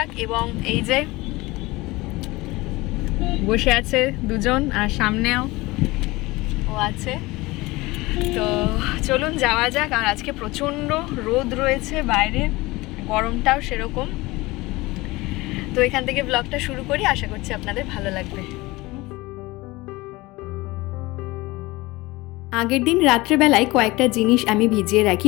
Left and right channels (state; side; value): quieter; right; 21.2 dB